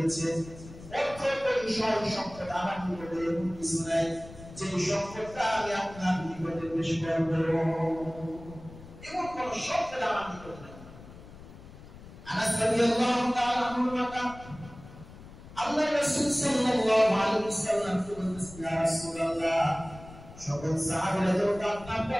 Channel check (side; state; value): left; noise; rumble, 17 dB below the sound